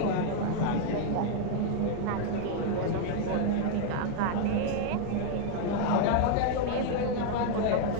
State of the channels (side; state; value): both; different; correlation 0.00